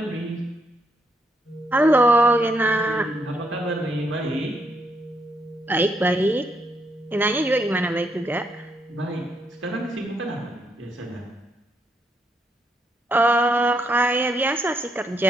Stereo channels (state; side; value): normal; both; correlation 0.76